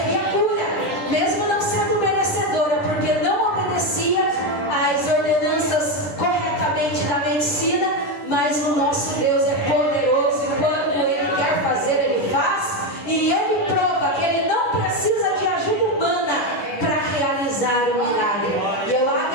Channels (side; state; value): right; late; 10 ms